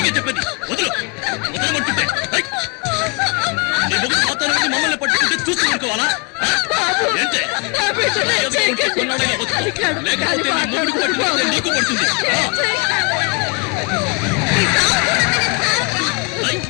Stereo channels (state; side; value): quieter; right; 30.1 dB